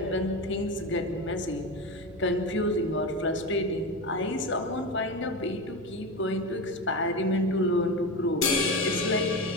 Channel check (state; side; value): normal; both; correlation 0.20